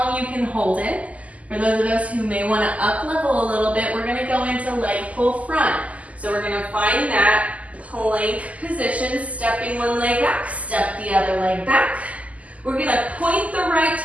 you can hold it. For those of us who may want to up level a little bit, we're going to go into leg pull front. So we're going to find that plank position, stepping one leg back, step the other leg back. We're going to point the right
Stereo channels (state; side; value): late; left; 0.071 ms